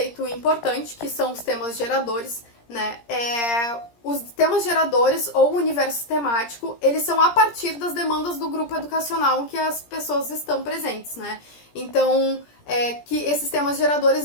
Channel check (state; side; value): late; right; 17 ms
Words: importante, que são os temas geradores, né? Os temas geradores ou o universo temático, eles são a partir das demandas do grupo educacional em que as pessoas estão presentes, né? Então, que esses temas